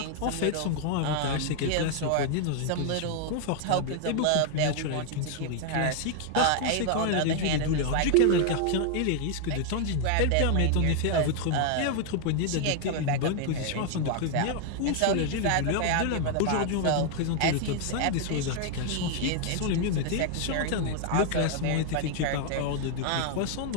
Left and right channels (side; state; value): both; different; correlation 0.00